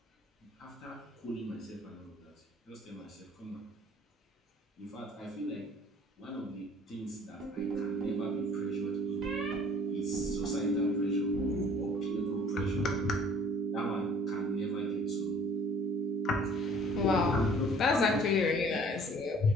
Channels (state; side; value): normal; both; correlation 0.53